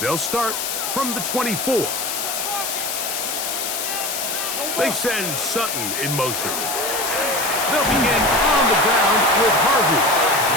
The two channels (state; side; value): noise; left; hiss, 3 dB below the sound